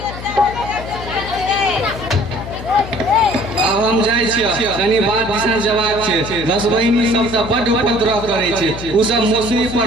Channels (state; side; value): noise; left; hum, 11 dB below the sound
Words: अब हम जाय छी, कनी बात दिशा जवाब छै। 10 बहिनी सब से बड़ उपद्रव करे छै, उ सब मौसमी